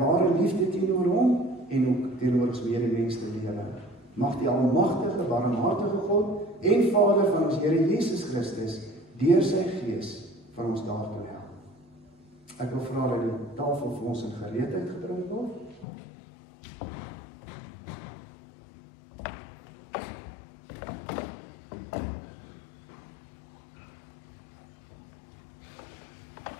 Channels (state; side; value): drops out; right; at 15.9 s